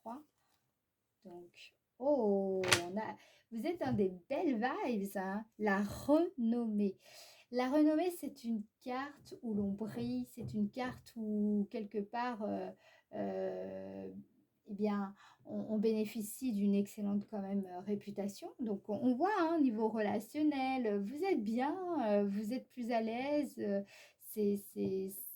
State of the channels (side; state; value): both; identical; correlation 1.00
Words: Donc, oh, vous êtes dans des belles vibes, hein? La renommée. La renommée, c'est une carte où l'on brille, c'est une carte où quelque part, eh bien, on bénéficie d'une excellente quand même réputation. Donc, on voit, hein, niveau relationnel, vous êtes bien, vous êtes plus à l'aise.